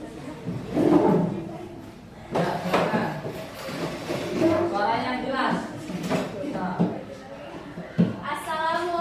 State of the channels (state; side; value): identical; both; correlation 1.00